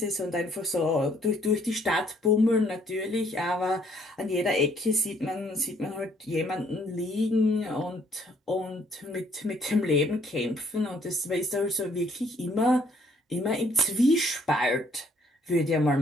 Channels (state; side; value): normal; both; correlation 0.65